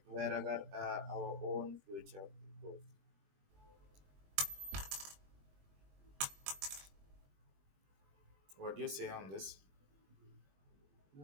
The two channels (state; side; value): late; left; 21 ms